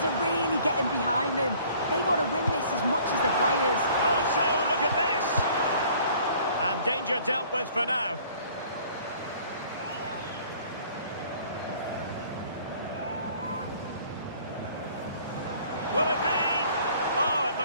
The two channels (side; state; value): both; inverted; correlation -0.54